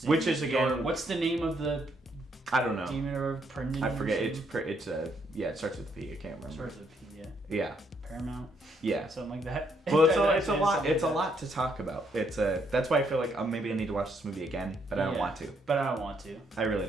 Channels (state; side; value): normal; both; correlation 0.72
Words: Which is again, what's the name of the? I don't know. Demon or Prendon? I forget. It starts with P. I can't remember. Starts with P. Yeah. Yeah. Paramount. Yeah. Something like that. Well, it's a lot. It's a lot to talk about. That's why I feel like maybe I need to watch this movie again, but I don't want to. But I don't want to. I really